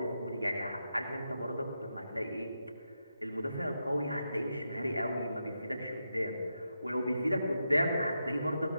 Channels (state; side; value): inverted; both; correlation -0.86